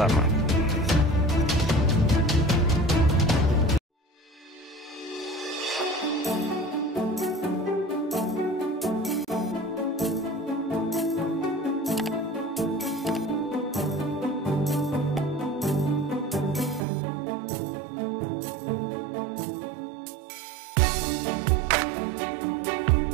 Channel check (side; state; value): left; drops out; at 16.8 s